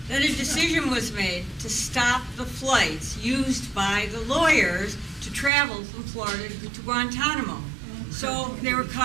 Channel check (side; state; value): left; drops out; at 5.5 s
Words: Then a decision was made to stop the flights used by the lawyers to travel from Florida to Guantanamo. So they were